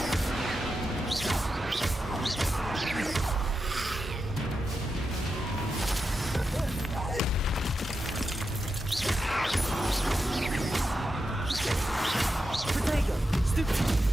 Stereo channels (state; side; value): normal; both; correlation 0.88